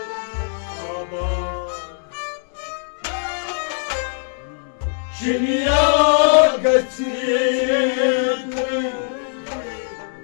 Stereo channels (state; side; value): silent; right; digital silence